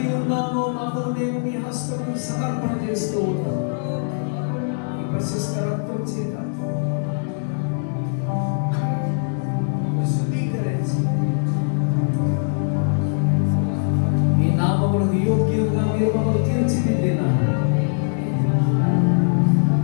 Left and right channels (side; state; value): right; silent; digital silence